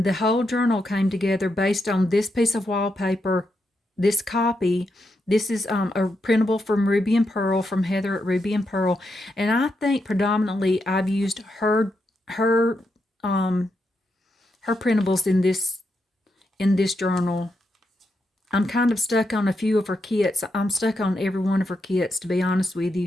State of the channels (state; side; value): normal; both; correlation 0.83